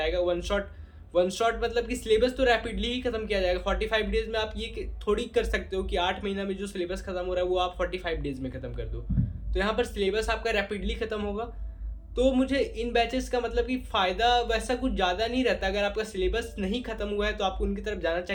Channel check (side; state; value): both; identical; correlation 1.00